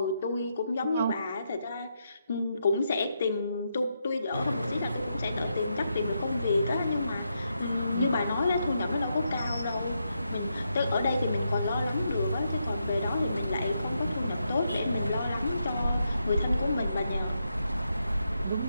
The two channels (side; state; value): both; inverted; correlation -0.82